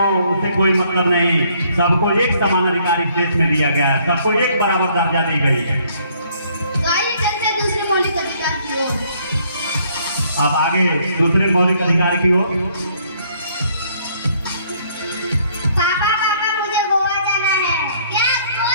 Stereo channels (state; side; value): inverted; both; correlation -0.64